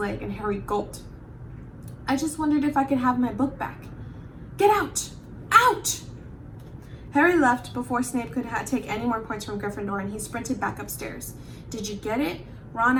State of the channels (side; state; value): both; identical; correlation 1.00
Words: and Harry gulped. "I just wondered if I could have my book back." "Get out! Out!" Harry left before Snape could take any more points from Gryffindor, and he sprinted back upstairs. "Did you get it?" Ron